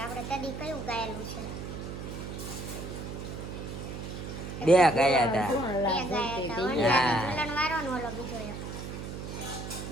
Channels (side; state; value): right; noise; hum, 7 dB below the sound